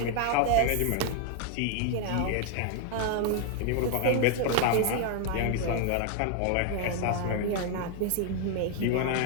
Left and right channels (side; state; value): both; different; correlation 0.00